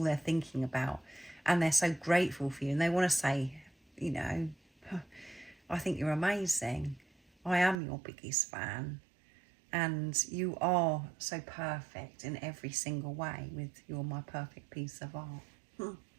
they're thinking about, and they're so grateful for you, and they want to say, I think you're amazing. I am your biggest fan, and you are so perfect in every single way. You're my perfect piece of art. You're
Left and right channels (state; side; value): drops out; left; at 7.8 s